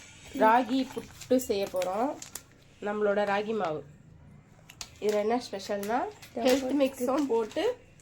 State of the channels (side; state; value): both; identical; correlation 1.00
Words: ராகி புட்டு செய்ய போகிறோம். நம்மளோட ராகி மாவு இதில் என்ன ஸ்பெஷல்னா ஹெல்த் மிக்ஸும் போட்டு